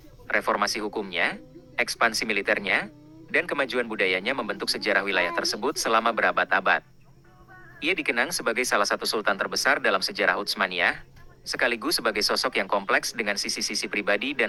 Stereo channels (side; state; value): both; identical; correlation 1.00